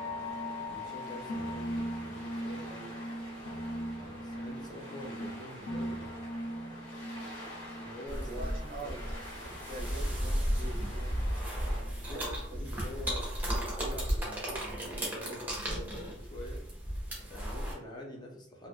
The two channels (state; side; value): normal; both; correlation 0.72